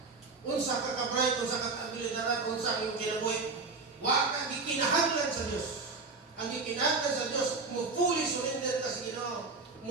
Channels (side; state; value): left; quieter; 4.0 dB